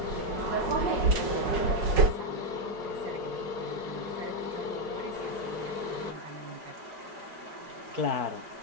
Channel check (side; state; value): left; late; 5.4 ms